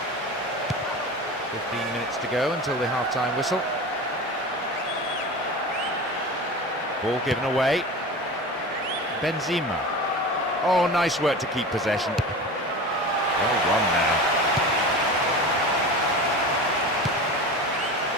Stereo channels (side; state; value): both; normal; correlation 0.31